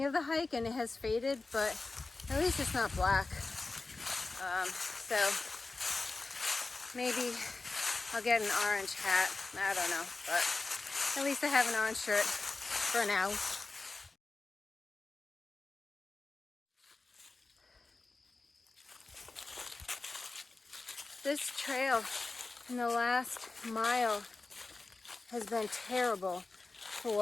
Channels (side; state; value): right; quieter; 3.6 dB